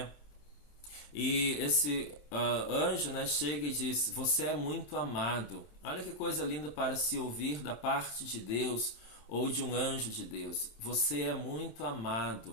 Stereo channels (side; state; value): right; late; 27 ms